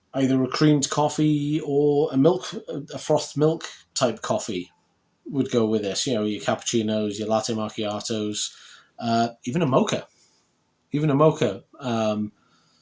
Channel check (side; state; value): both; identical; correlation 1.00